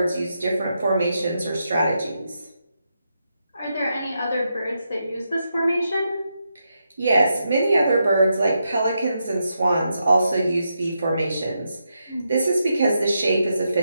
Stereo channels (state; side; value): inverted; both; correlation -0.84